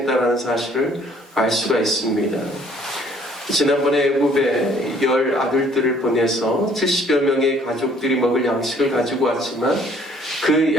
사실을 알 수가 있습니다. 지난번에 애굽에 10 아들들을 보내서 70여 명의 가족들이 먹을 양식을 가지고 왔지만 그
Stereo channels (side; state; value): both; normal; correlation 0.60